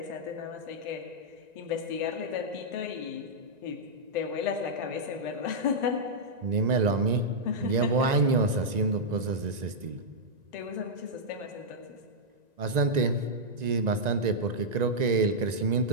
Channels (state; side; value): late; left; 1.9 ms